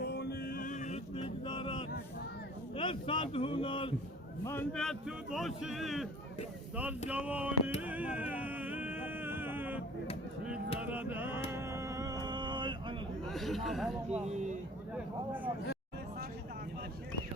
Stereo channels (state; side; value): normal; both; correlation 0.47